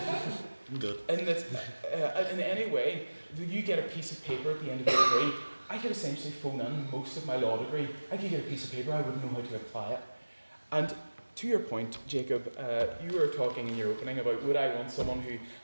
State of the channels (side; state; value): both; inverted; correlation -1.00